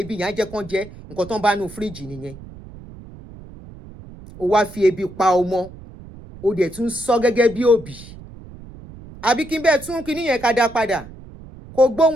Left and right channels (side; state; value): right; noise; rumble, 17 dB below the sound